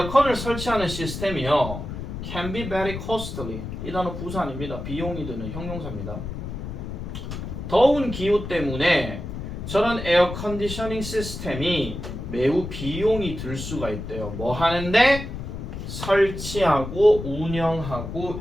설치하는 시스템이요. Can be very costly. 이 단어 부사 아닙니다. 비용이 드는 형용사입니다. 더운 기후 때문에 저런 에어 컨디셔닝 시스템이 매우 비용이 들 수가 있대요. 뭐 하는데? 설치하고 운영하고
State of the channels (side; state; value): left; noise; rumble, 7 dB below the sound